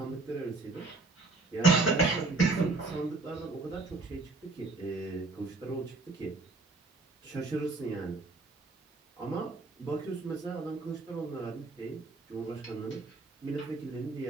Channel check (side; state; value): left; quieter; 3.5 dB